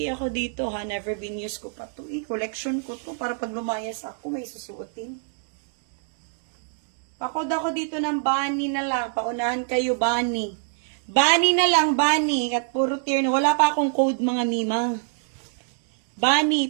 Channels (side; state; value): left; silent; digital silence